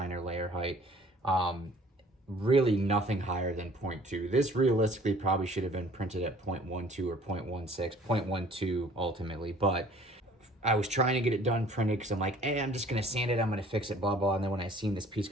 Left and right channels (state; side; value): normal; both; correlation 0.53